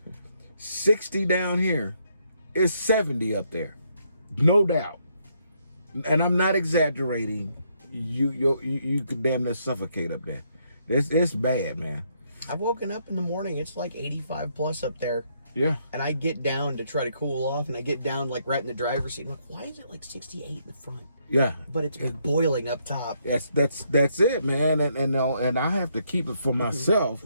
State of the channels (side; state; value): both; inverted; correlation -0.73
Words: 60 down here, it's 70 up there, no doubt. And I'm not exaggerating. You could damn near suffocate up there. It's bad, man. I've woken up in the morning, it's like 85 plus up there. Yeah. And I get down to try to cool off, and I get down like right in the driver's seat. I'm like, why is it like 68 in the front? Yeah. But it's boiling up top. That's it, man. And I have to keep it for myself